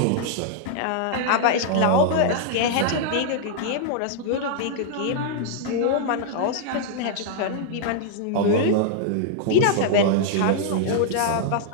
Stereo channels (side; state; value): both; different; correlation -0.01